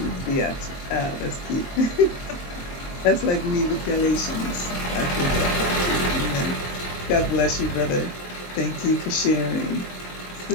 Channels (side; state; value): right; late; 23 ms